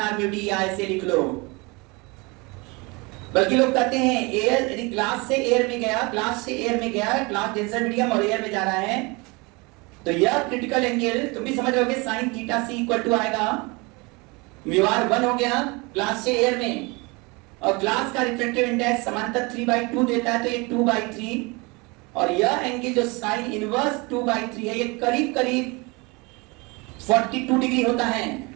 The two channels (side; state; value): left; quieter; 26.9 dB